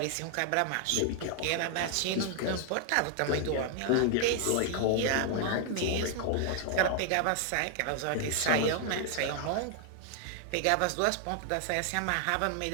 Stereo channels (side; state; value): both; different; correlation 0.00